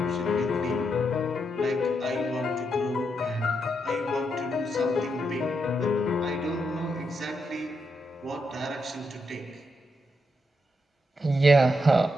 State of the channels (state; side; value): normal; both; correlation 0.81